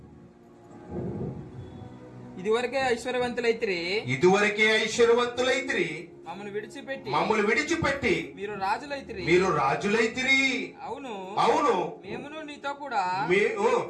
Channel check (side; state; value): both; identical; correlation 1.00